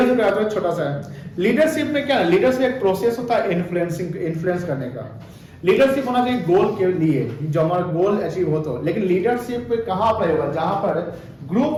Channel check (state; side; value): identical; both; correlation 1.00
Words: कराते हैं, छोटा सा है। लीडरशिप में क्या है, लीडरशिप एक प्रोसेस होता है इन्फ्लुएंस करने का। लीडरशिप होना चाहिए गोल के लिए, जो हमारा गोल अचीव हो तो। लेकिन लीडरशिप कहां पर होगा, जहां पर ग्रुप